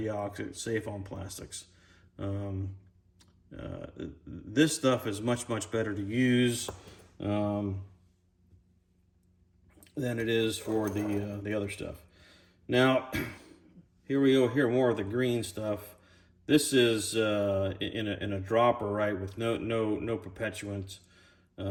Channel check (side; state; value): both; identical; correlation 1.00